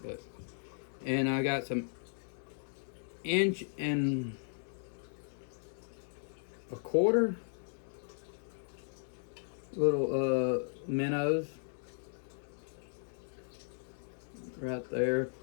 and I got some 1 and a quarter little minnows right there.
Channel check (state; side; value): silent; right; digital silence